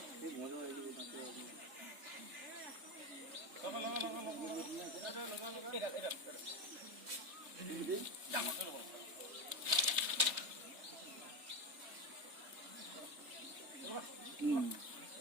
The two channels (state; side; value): late; left; 3.3 ms